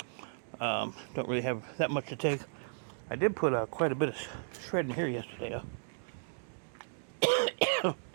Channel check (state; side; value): silent; left; digital silence